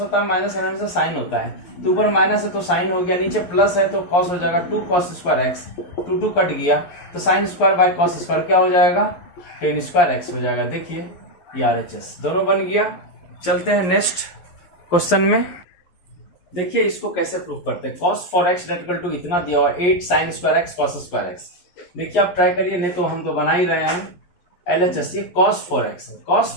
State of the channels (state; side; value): late; right; 11 ms